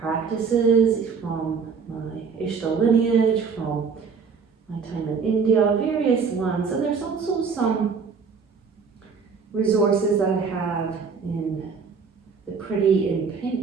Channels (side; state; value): left; quieter; 5.5 dB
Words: from my Ishtar lineage, from my time in India, various ones, and there's also some resources that I have in the Pretty in